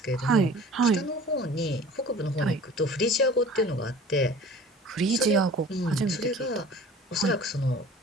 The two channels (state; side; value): normal; both; correlation 0.45